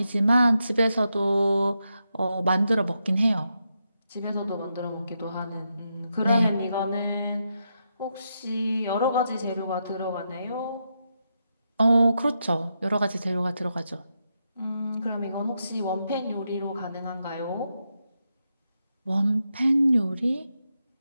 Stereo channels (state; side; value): inverted; both; correlation -0.84